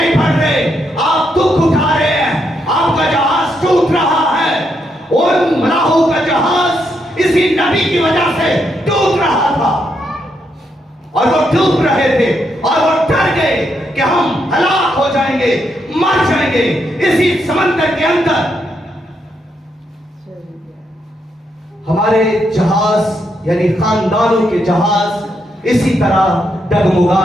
बढ़ रहे, आप दुख उठा रहे हैं, आपका जहाज टूट रहा है। उन मलाहों का जहाज इसी नबी की वजह से टूट रहा था और वो डूब रहे थे और वो डर गए कि हम हलाक हो जाएंगे, मर जाएंगे इसी समंदर के अंदर। हमारे जहाज यानी खानदानों के जहाज इसी तरह डगमगा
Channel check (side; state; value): both; normal; correlation 0.79